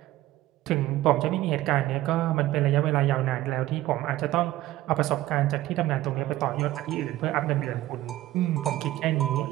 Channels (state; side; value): quieter; left; 15.6 dB